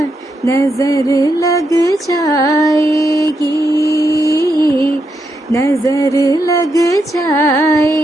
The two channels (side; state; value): both; normal; correlation 0.82